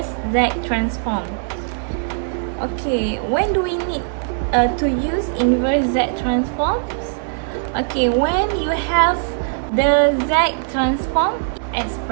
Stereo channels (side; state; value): left; silent; digital silence